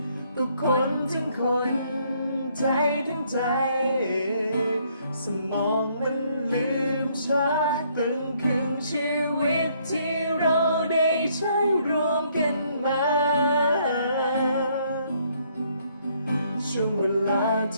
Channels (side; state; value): both; inverted; correlation -0.68